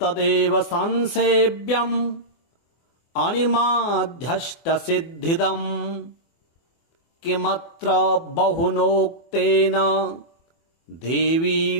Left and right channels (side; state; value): right; late; 24 ms